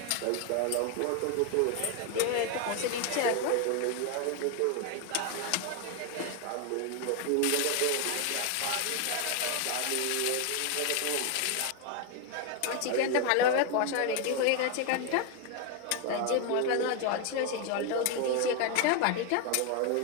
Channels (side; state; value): both; different; correlation 0.01